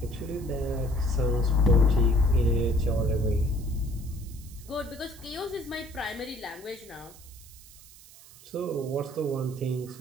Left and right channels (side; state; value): right; noise; hiss, 21 dB below the sound